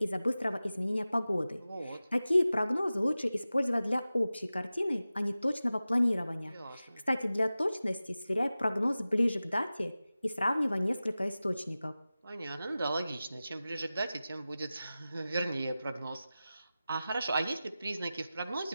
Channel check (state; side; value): inverted; both; correlation -0.95